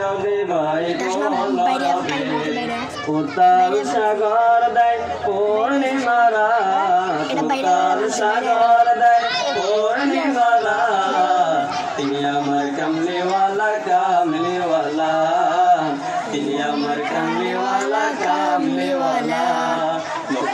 বহে কলরবে। উত্তাল সাগর দেয় পূর্ণিমারা, উত্তাল সাগর দেয় পূর্ণিমারা। তিনি আমার কামলিওয়ালা কামলিওয়ালা, তিনি আমার কামলিওয়ালা কামলিওয়ালা।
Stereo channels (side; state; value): both; identical; correlation 1.00